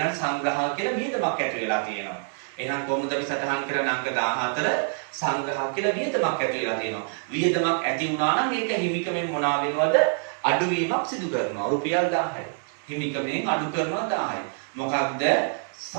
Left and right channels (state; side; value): silent; left; 58 dB below the other